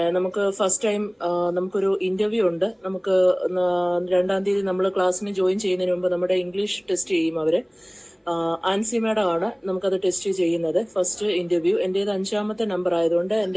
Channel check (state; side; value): identical; both; correlation 1.00